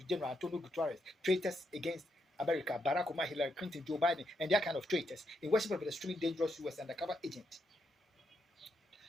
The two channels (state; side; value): normal; both; correlation 0.80